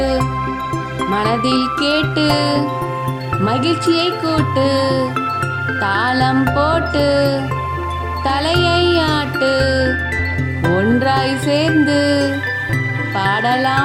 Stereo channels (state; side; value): identical; both; correlation 1.00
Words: மனதில் கேட்டு, மகிழ்ச்சியை கூட்டு, தாளம் போட்டு, தலையை ஆட்டு, ஒன்றாய் சேர்ந்து,